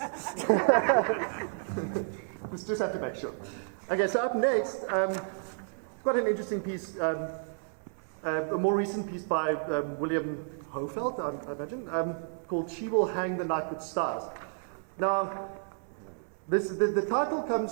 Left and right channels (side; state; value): left; silent; 57 dB below the other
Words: just have to make sure. Okay, so up next, quite an interesting piece, a more recent piece by William Hofeld, I imagine, called "She Will Hang the Night with Stars." Now, the title